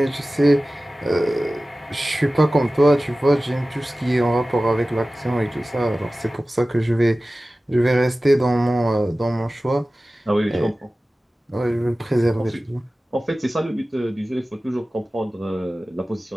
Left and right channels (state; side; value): normal; both; correlation 0.96